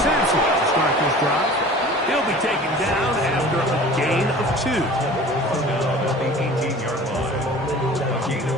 Sampson to start this drive. He'll be taken down after a gain of 2. Down at the 18-yard line. A gain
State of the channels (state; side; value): normal; both; correlation 0.43